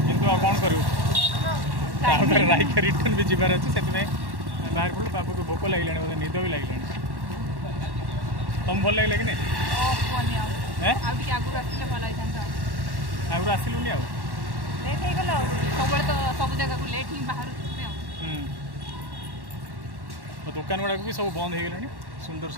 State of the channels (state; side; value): late; left; 1.1 ms